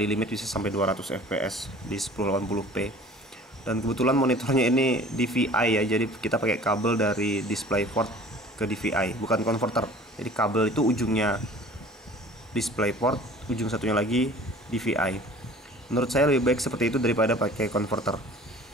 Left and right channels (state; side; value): normal; both; correlation 0.47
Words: limit bisa sampai 200 fps di 1080p. Dan kebetulan monitornya ini DVI ya, jadi kita pakai kabel dari DisplayPort ke ke DVI, bukan converter. Jadi kabel itu ujungnya DisplayPort, ujung satunya lagi DVI. Menurut saya lebih baik seperti itu daripada pakai converter.